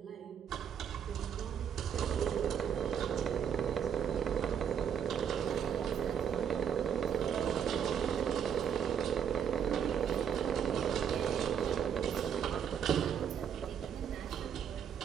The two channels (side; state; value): left; quieter; 8.0 dB